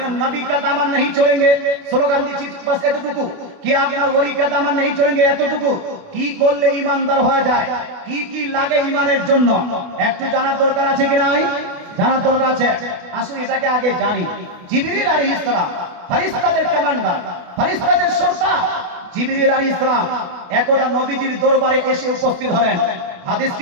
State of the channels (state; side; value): late; left; 28 ms